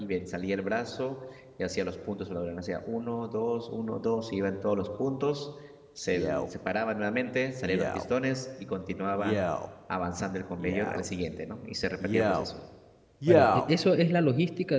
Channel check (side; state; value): both; identical; correlation 1.00